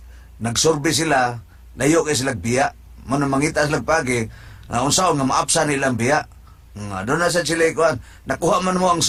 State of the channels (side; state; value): both; identical; correlation 1.00